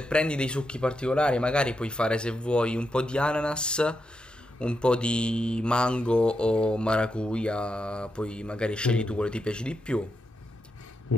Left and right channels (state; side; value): normal; both; correlation 0.85